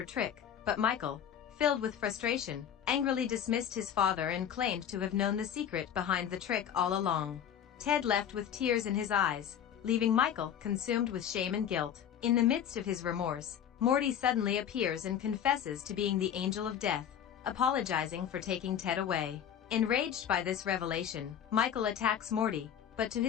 trick, but Michael, filled with frustration, angrily dismissed his father and claimed to have known the secret behind the trick all along. Ted left with tears in his eyes, leaving Michael consumed with shame and guilt. In the midst of his remorse, Morty suddenly appears and confesses to being the angel of death, apologizing for taking Ted away. Enraged by this revelation, Michael attacks Morty, but to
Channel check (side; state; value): right; quieter; 9.2 dB